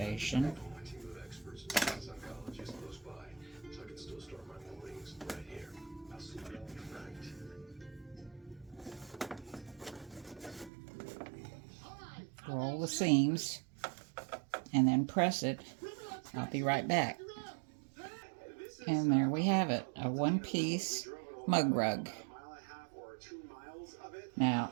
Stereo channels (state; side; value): drops out; left; at 10.7 s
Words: Roll the seams and then press it. I'll be right back. And there we have it, a one-piece mug rug. Now,